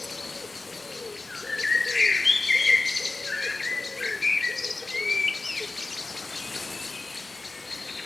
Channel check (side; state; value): right; quieter; 3.4 dB